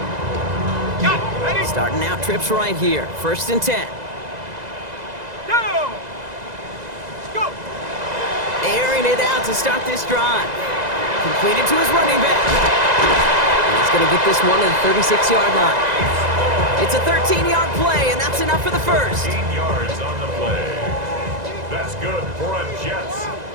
line. Starting out trips right here. First and 10. Airing it out to start this drive. Completed to his running back. And he's going to get this one to the 36-yard line. It's a 13-yard play, and that's enough for the first. 13 yards on the play. That's good for a Jets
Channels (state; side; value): late; left; 2.0 ms